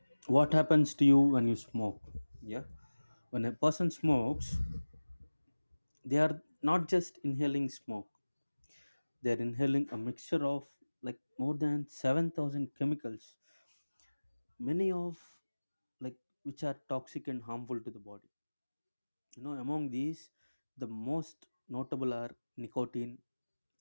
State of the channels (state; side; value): inverted; both; correlation -1.00